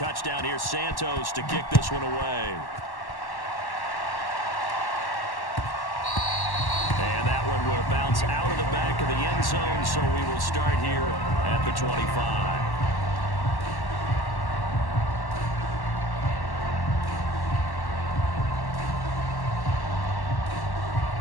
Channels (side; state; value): right; late; 1.1 ms